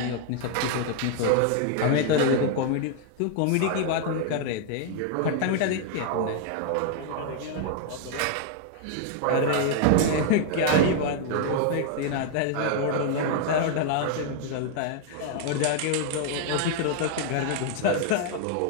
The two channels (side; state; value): both; different; correlation 0.00